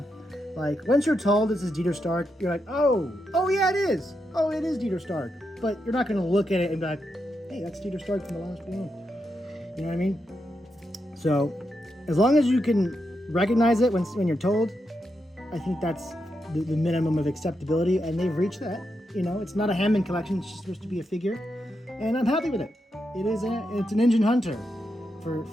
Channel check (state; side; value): normal; both; correlation 0.84